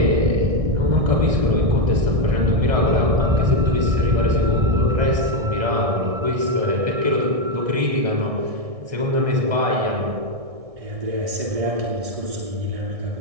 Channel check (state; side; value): late; left; 1.6 ms